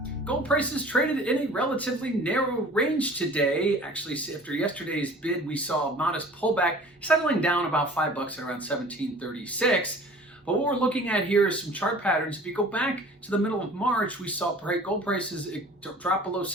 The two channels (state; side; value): normal; both; correlation 0.46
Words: Gold prices traded in a relatively narrow range today. Actually, after yesterday's bid, we saw a modest pullback, settling down about $5 at around 1736. But what we're looking at here is some chart patterns. If you go back to the middle of March, we saw gold prices drop below